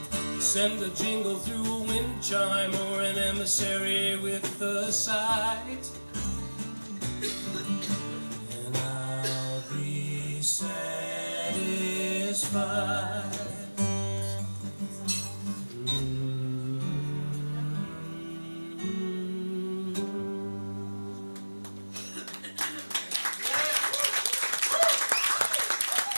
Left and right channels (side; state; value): both; inverted; correlation -1.00